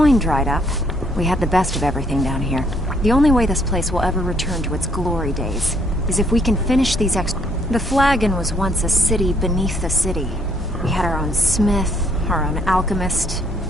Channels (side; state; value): both; normal; correlation 0.68